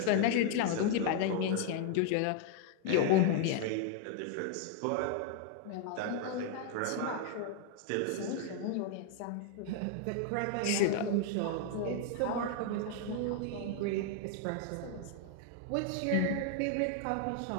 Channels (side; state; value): both; different; correlation 0.00